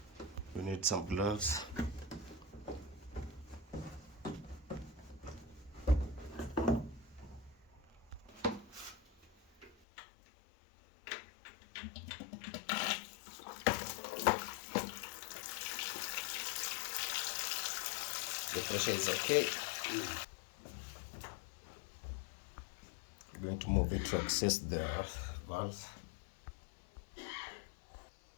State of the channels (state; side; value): drops out; right; at 9.8 s